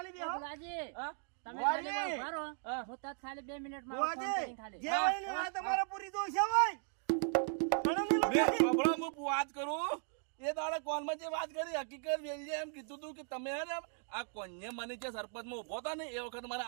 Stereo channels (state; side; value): silent; left; 53 dB below the other